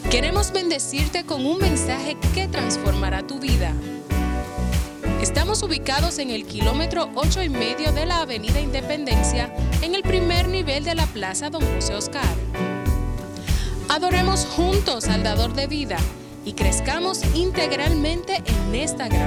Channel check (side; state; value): both; identical; correlation 1.00